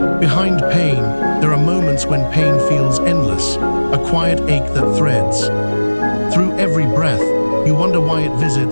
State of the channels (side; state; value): both; inverted; correlation -1.00